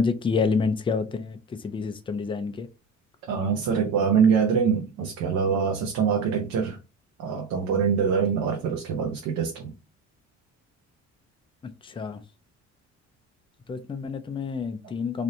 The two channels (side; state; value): left; quieter; 3.1 dB